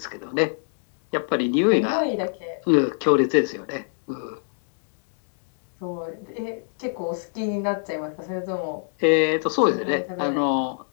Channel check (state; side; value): silent; right; digital silence